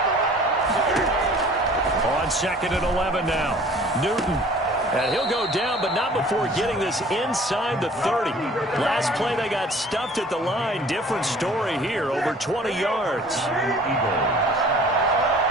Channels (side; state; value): both; normal; correlation 0.50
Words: On 2nd and 11 now. Newton. And he'll go down, but not before getting this inside the 30. Last play, they got stuffed at the line. Different story here, over 20 yards.